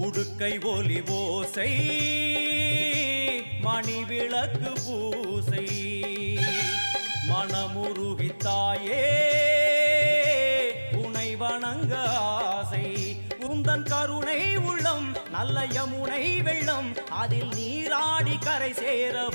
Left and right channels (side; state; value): both; inverted; correlation -1.00